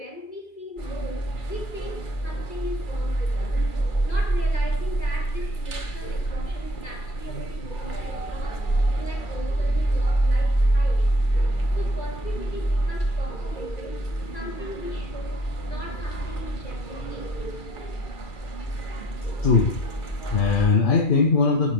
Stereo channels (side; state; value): right; late; 2.4 ms